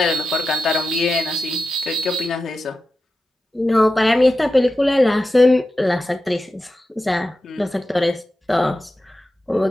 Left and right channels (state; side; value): normal; both; correlation 0.92